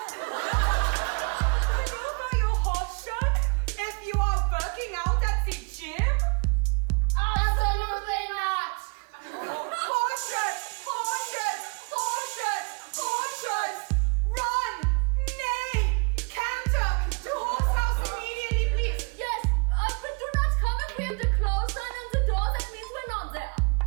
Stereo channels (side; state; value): left; quieter; 33.6 dB